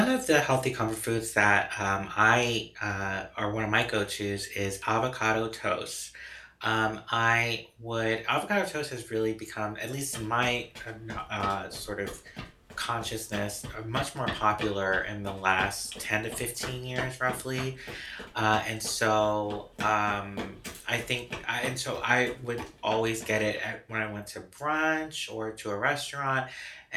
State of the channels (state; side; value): identical; both; correlation 1.00